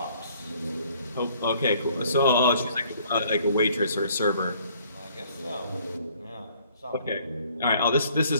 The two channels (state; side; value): inverted; both; correlation -0.60